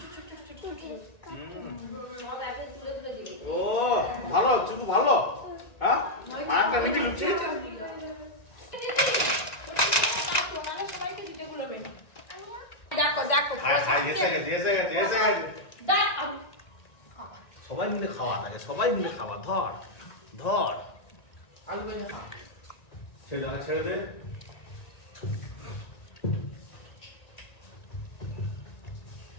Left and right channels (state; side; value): late; right; 1.9 ms